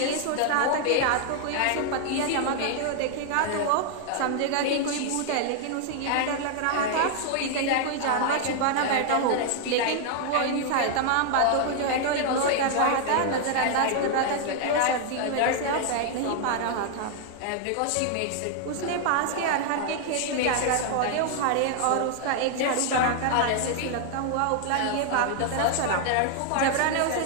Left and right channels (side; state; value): both; different; correlation 0.00